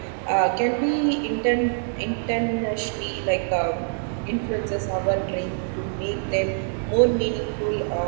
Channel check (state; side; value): silent; left; digital silence